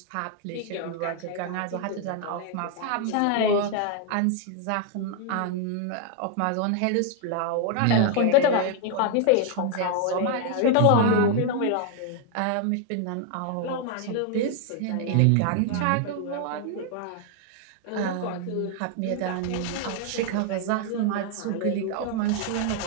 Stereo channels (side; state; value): both; different; correlation 0.00